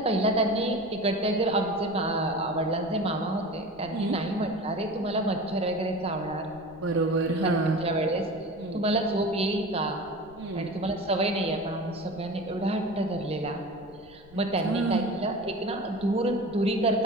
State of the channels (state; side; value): noise; left; rumble, 24 dB below the sound